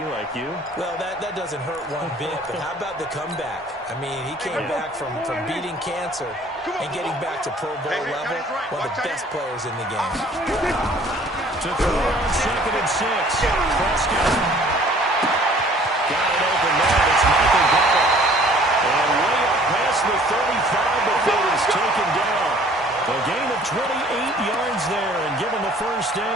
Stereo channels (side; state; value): both; normal; correlation 0.54